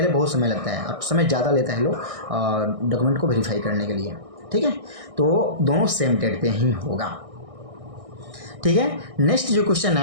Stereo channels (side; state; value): left; late; 1.6 ms